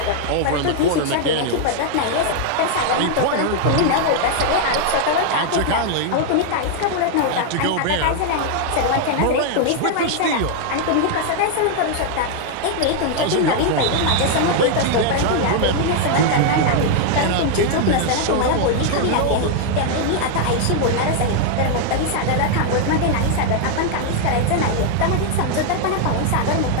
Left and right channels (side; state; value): both; different; correlation 0.00